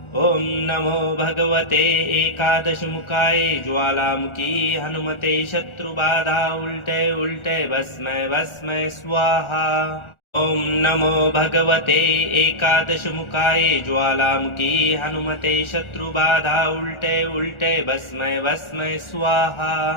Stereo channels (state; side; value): late; right; 1.4 ms